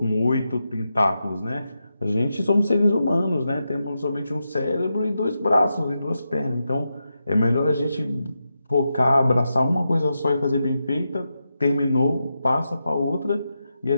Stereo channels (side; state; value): both; inverted; correlation -0.87